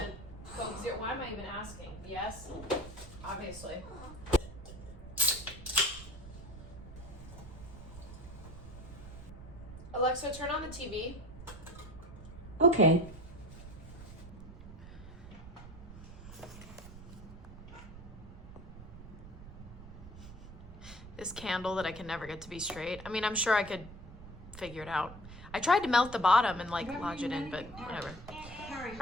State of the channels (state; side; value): noise; right; rumble, 14 dB below the sound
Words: Coke Zero? Why am I even asking? Yes, obviously. Alexa, turn on the TV. Okay. This candle that I can never get to be straight. I mean, I'm sure I could figure it out. I tried to melt the bottom and like lodge it in, but whatever. All